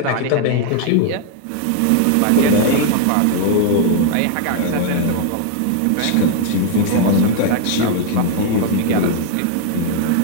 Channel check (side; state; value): both; different; correlation 0.00